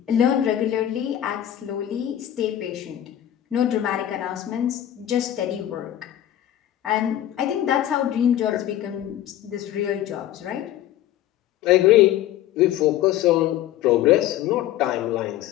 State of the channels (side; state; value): right; quieter; 12.2 dB